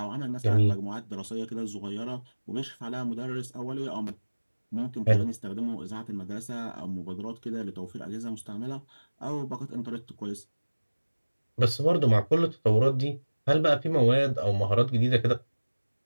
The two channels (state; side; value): inverted; both; correlation -1.00